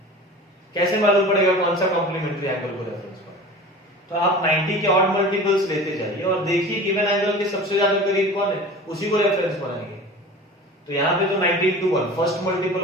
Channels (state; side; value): normal; both; correlation 0.37